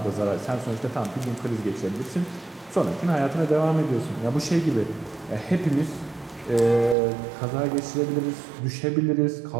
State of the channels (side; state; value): left; drops out; at 7.0 s